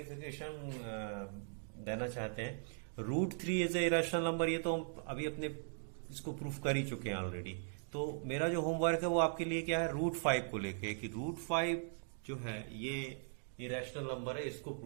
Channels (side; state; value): left; silent; digital silence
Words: देना चाहते हैं, √3 इज ए इरेशनल नंबर. ये तो अभी अपने इसको प्रूफ कर ही चुके हैं ऑलरेडी. तो मेरा जो होमवर्क है वो आपके लिए क्या है, √5 को लेके कि √5 जो है ये इरेशनल नंबर है, इसको